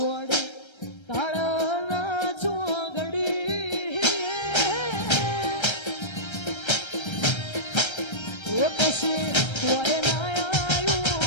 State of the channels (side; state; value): right; late; 1.3 ms